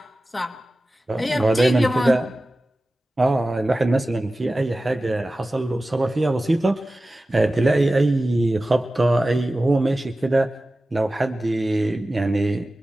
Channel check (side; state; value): both; normal; correlation 0.96